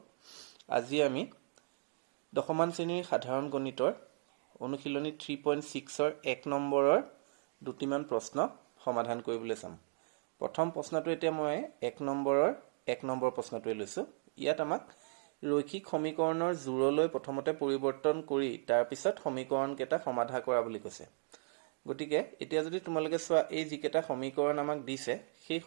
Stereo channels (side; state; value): left; silent; digital silence